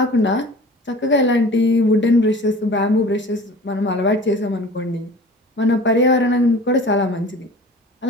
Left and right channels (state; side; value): normal; both; correlation 0.42